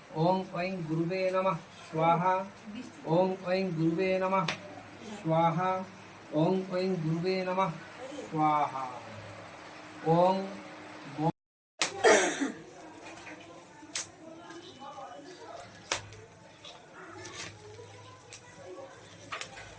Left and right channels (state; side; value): identical; both; correlation 1.00